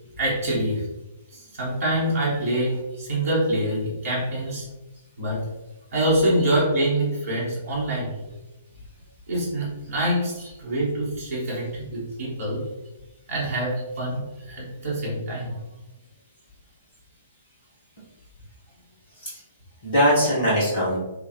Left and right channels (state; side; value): inverted; both; correlation -0.54